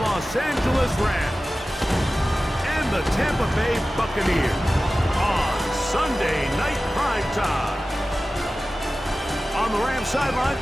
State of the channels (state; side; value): normal; both; correlation 0.95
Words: Angeles Rams and the Tampa Bay Buccaneers on Sunday Night Prime Time. On the Rams sideline